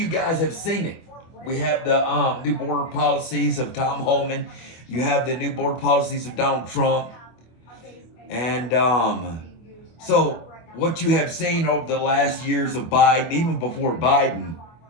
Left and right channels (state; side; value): late; right; 24 ms